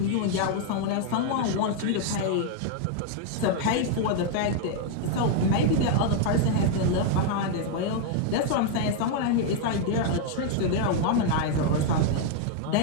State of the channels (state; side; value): different; both; correlation 0.00